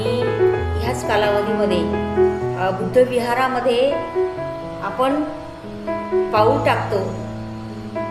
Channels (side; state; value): both; identical; correlation 1.00